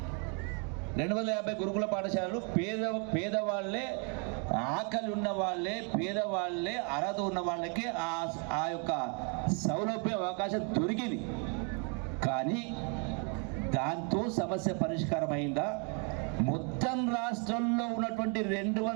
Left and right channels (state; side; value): quieter; left; 37.7 dB